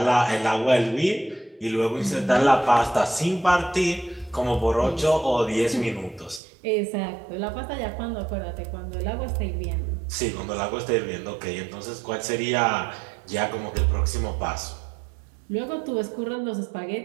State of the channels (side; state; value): left; drops out; at 6.4 s